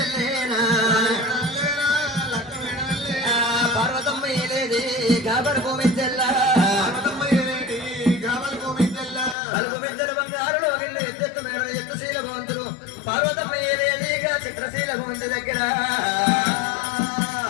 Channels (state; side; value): drops out; right; at 9.3 s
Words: పార్వతమ్మ ఏలేది గాబర్ గోమిద్దెల్ల కలుపు మిద్దెల బంగారులో గిళ్ళు ఎత్తెత్తు మేడ ఎత్తుశీల భవంతులు పార్వతమ్మ ఏలేదిగా చిత్రశీల భవంతి దగ్గర